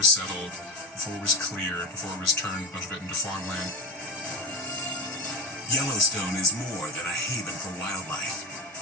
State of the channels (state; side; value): normal; both; correlation 0.17